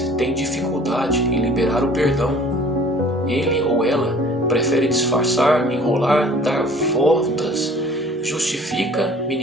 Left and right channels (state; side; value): normal; both; correlation 0.50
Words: tem dificuldade em liberar o perdão. Ele ou ela prefere disfarçar, enrolar, dar voltas, justifica,